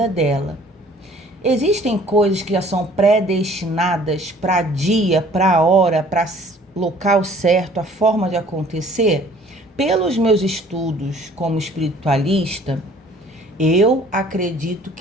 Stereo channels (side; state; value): both; normal; correlation 0.54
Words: dela. Existem coisas que já são predestinadas para dia, para hora, para local certo, a forma de acontecer? Pelos meus estudos como espiritualista, eu acredito